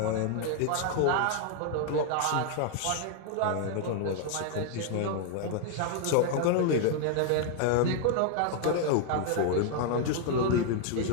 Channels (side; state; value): both; different; correlation 0.00